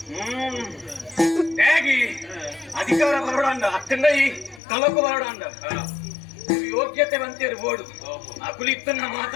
ಅಧಿಕಾರ ಬರೋಣ ಅಕ್ಕಂದ ಈ ಕಲಕು ಬರೋಣ ಯೋಗ್ಯತೆ ಬಂತೇರು ಬೋಡು ಅಕುಲಿತ್ತನ್ನ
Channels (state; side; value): drops out; right; at 4.6 s